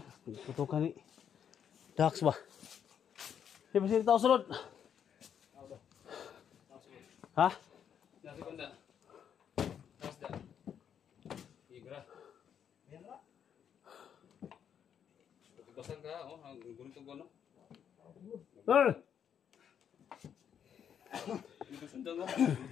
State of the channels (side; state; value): right; quieter; 8.4 dB